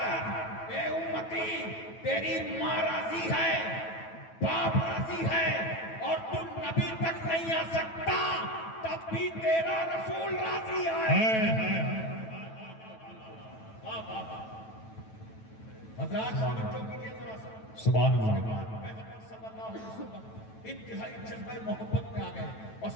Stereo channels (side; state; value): right; late; 9.1 ms